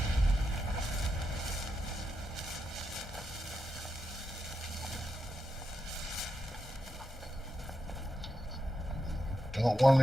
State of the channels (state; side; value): normal; both; correlation 0.86